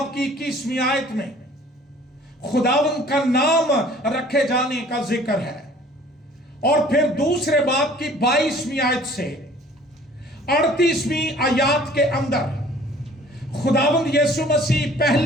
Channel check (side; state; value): both; normal; correlation 0.52